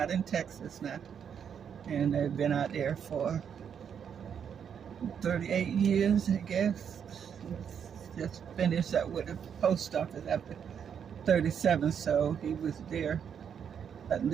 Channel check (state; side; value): quieter; left; 7.8 dB